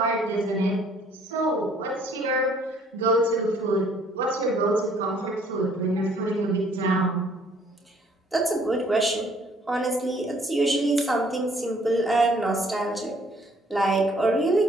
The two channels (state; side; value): normal; both; correlation 0.61